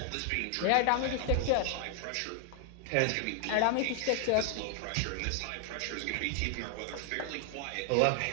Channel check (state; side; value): different; both; correlation 0.00